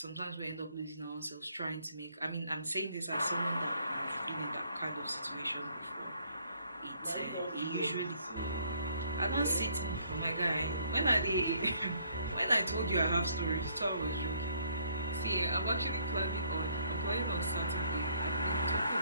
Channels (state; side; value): inverted; both; correlation -0.66